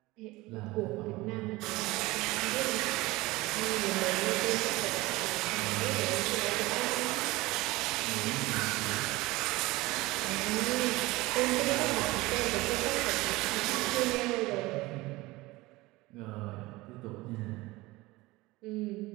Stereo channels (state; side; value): quieter; left; 20.6 dB